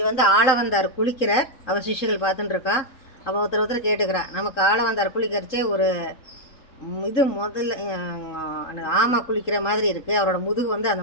வந்து ஆள வந்தார் குளிக்கிறார். அவர் சிஷ்யர்கள் பார்த்துட்டுருக்கா. அவள் ஒருத்தர் கேட்டுக்கிறா, நமக்கு ஆள வந்தார் குளிக்கிறச்சே ஒரு இது முதல்ல ஆமை குளிக்கிற மாதிரி இருக்குது, அவரோட முதுகு வந்து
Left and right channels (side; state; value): right; late; 3.7 ms